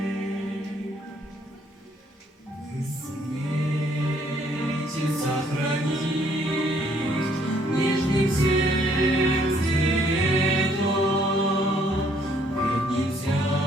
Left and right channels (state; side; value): normal; both; correlation 0.65